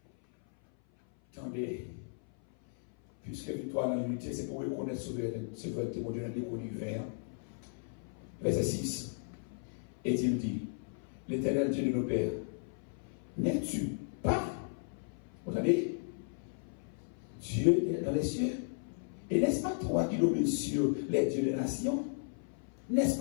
attendez, puisque victoire dans l'unité, c'est pour reconnaître souveraineté, mon Dieu, dans l'univers. Verset 6. Et il dit, l'Éternel Dieu de nos pères, n'es-tu pas, vous entendez, Dieu dans les cieux? Et n'est-ce pas toi qui domines sur les dieux des nations? N'est-ce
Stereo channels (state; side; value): silent; right; 54 dB below the other